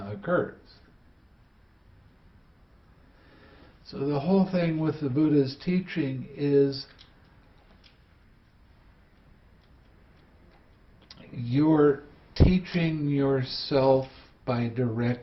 occurs. So the whole thing with the Buddha's teaching is you're teaching yourself by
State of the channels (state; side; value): identical; both; correlation 1.00